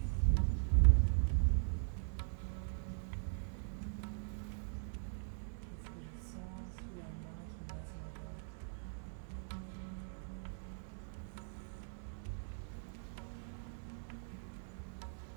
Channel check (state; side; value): silent; left; digital silence